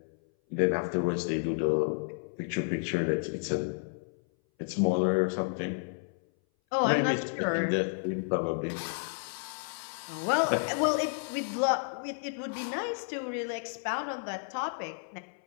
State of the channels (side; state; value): right; silent; 57 dB below the other